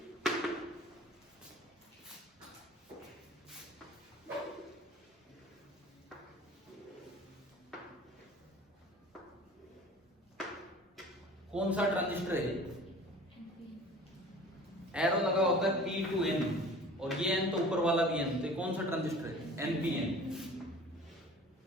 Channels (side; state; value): both; normal; correlation 0.44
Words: कौन सा ट्रांजिस्टर है? एरो लगा होता है P to N, और ये N तो ऊपर वाला भी N, तो कौन सा ट्रांजिस्टर है? NPN।